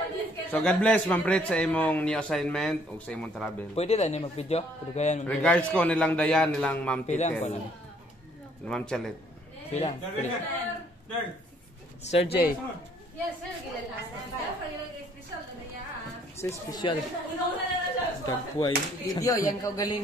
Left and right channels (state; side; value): normal; both; correlation 0.63